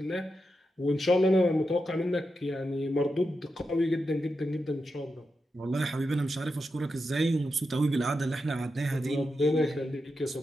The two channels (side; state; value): both; normal; correlation 0.88